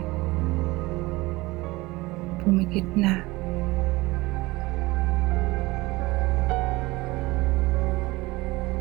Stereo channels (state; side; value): quieter; left; 21.1 dB